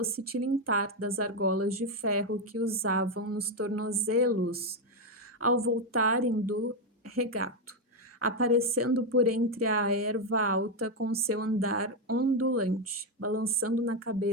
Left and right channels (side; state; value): both; normal; correlation 0.05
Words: tilintar das argolas de ferro que usavam nos tornozelos ao voltarem do regato, aparecendo por entre a erva alta com seu andar ondulante, balançando na